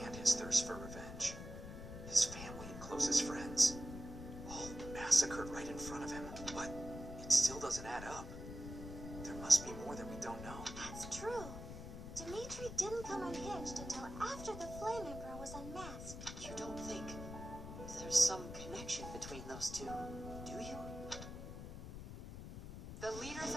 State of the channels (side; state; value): left; noise; rumble, 9 dB below the sound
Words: his thirst for revenge. His family and closest friends, all massacred right in front of him. But it still doesn't add up. There must be more that we don't know. That's true. Dimitri didn't come unhinged until after the Flame Emperor was unmasked. You don't think there's some connection between those two, do you? The leaders